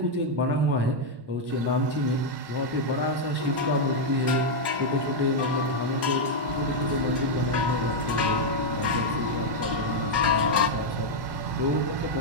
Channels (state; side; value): late; left; 1.1 ms